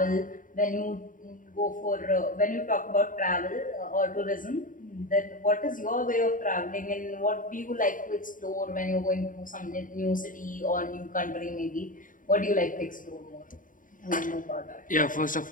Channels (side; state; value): right; late; 0.39 ms